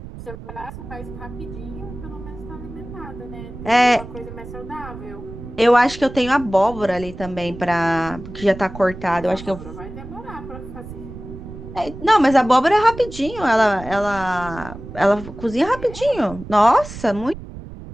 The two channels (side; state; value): right; noise; rumble, 13 dB below the sound